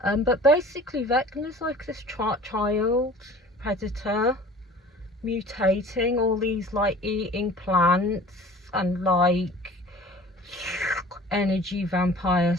But basically Vecna's like this child predator mutating all these like eating plants and like energy vampires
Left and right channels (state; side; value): normal; both; correlation 0.45